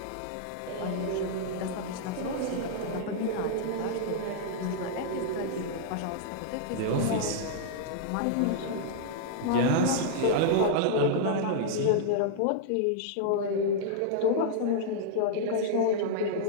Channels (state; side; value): different; both; correlation -0.01